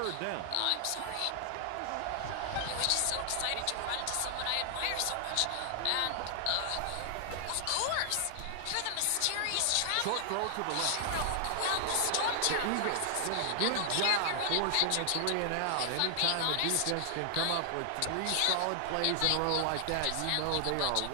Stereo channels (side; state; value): both; different; correlation -0.01